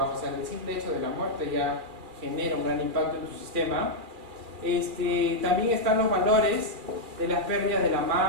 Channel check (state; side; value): late; left; 2.3 ms